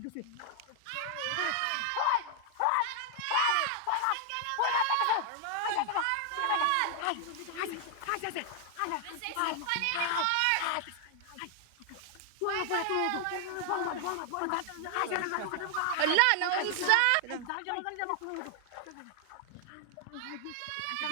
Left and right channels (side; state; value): both; different; correlation 0.00